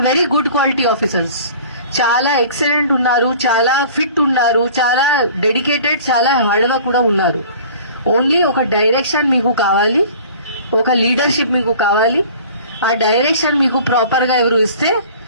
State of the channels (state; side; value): inverted; both; correlation -0.46